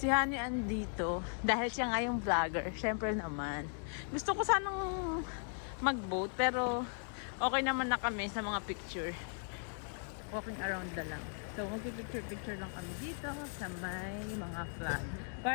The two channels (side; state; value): right; silent; 53 dB below the other